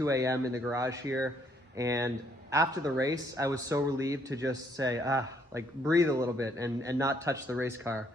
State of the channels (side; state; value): both; normal; correlation 0.68